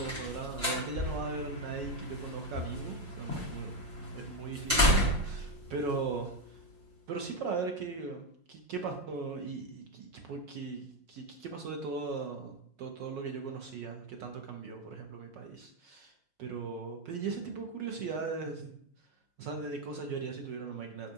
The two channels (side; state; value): left; late; 5.6 ms